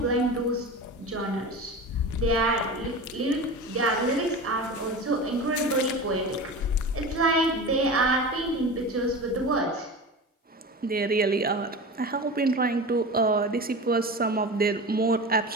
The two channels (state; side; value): normal; both; correlation 0.30